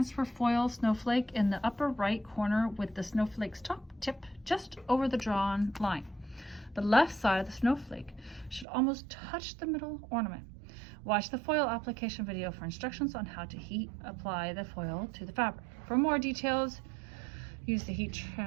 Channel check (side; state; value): left; drops out; at 8.7 s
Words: foil snowflake in the upper right corner with the snowflake's top tip just over the drawn line. The left side of the snowflake should almost touch the middle ornament. Watch the foil application video for instructions on how to heat apply the foil to the fabric. For more details, use the heat